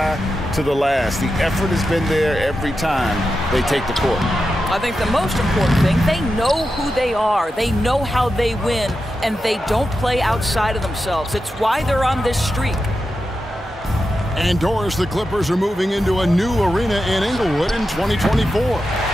to the last. The effort has been there every time they take the court. I think the most important thing, they know who they are. They know how they win, and they don't play outside of themselves. It's why they're on this streak. And Doris, the Clippers are moving into a new arena in Inglewood in 2024.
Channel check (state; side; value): normal; both; correlation 0.90